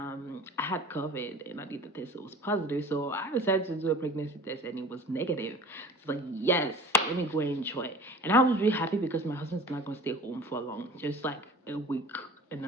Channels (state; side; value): normal; both; correlation 0.41